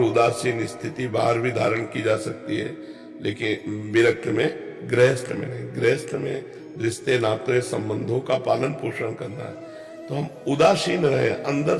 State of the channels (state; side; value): identical; both; correlation 1.00